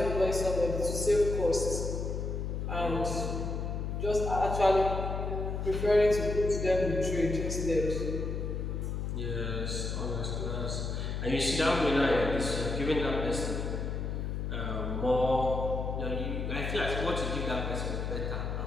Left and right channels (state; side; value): noise; left; hum, 3 dB below the sound